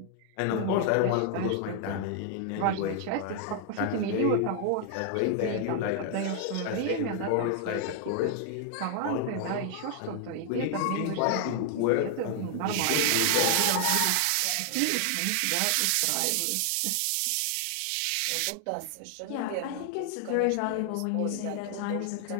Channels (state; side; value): different; both; correlation 0.00